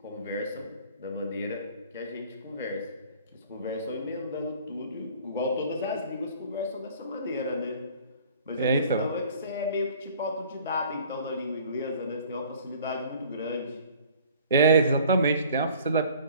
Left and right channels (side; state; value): both; inverted; correlation -0.50